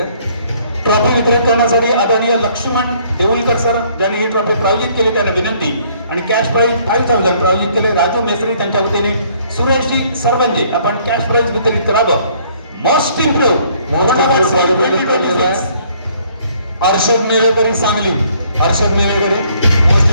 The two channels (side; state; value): both; inverted; correlation -0.62